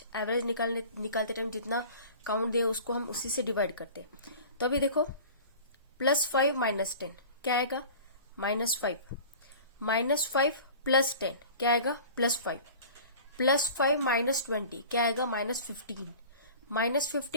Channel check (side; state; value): both; inverted; correlation -0.41